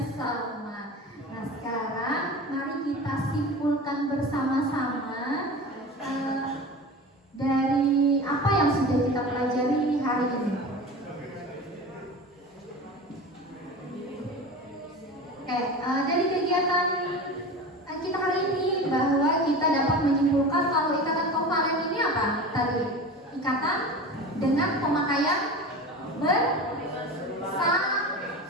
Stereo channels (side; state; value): both; normal; correlation 0.32